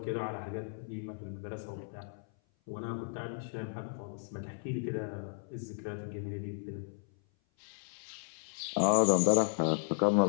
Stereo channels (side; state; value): right; silent; 55 dB below the other